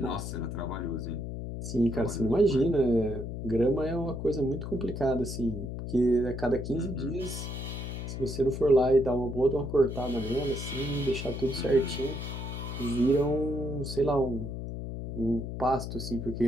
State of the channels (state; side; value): noise; left; hum, 6 dB below the sound